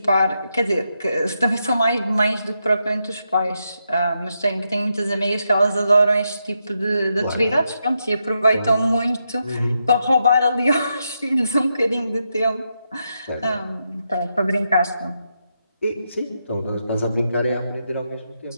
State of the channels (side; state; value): both; inverted; correlation -0.84